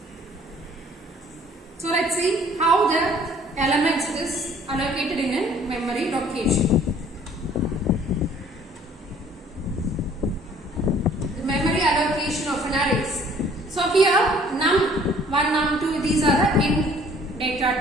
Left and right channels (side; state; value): both; normal; correlation 0.56